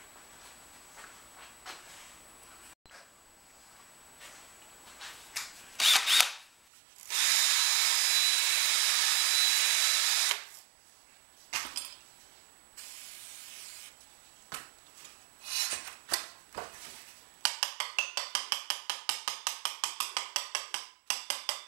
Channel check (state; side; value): drops out; left; at 6.7 s